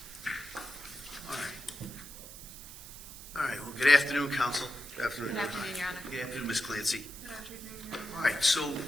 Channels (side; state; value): right; noise; hiss, 14 dB below the sound